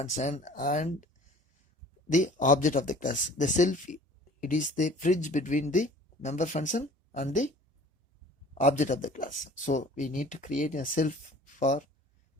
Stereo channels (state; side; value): normal; both; correlation 0.47